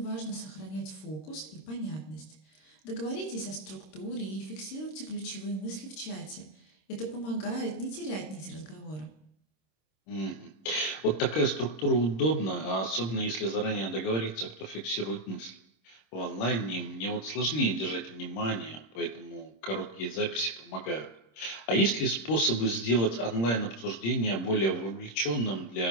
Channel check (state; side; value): late; right; 26 ms